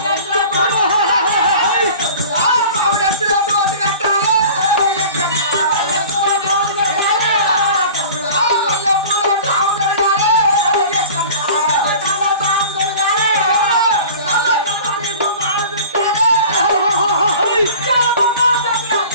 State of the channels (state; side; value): inverted; both; correlation -0.41